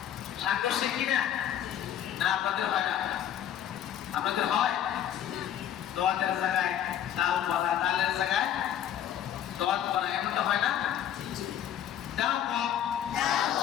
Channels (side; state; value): right; quieter; 10.4 dB